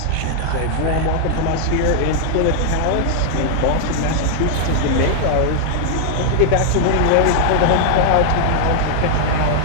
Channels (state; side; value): different; both; correlation -0.01